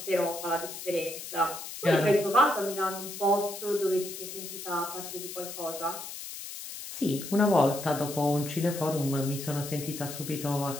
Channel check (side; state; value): left; noise; hiss, 10 dB below the sound